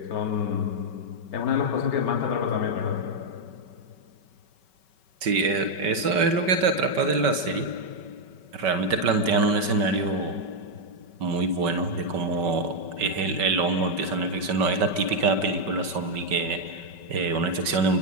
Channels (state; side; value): late; left; 5.3 ms